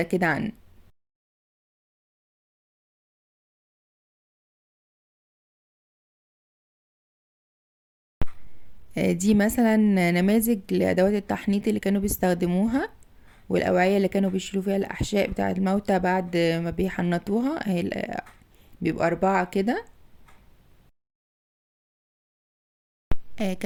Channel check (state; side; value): identical; both; correlation 1.00